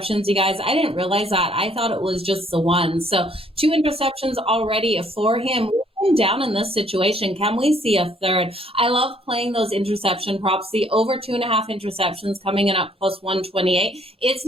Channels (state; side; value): normal; both; correlation 0.64